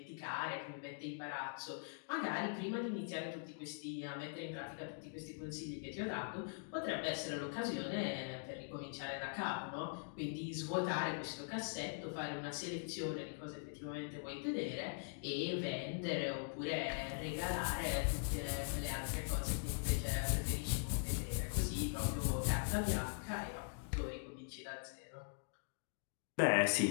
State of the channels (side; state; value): right; silent; digital silence